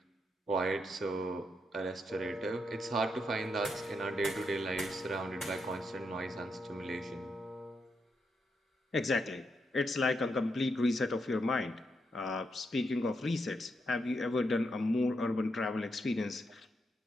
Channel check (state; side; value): normal; both; correlation 0.82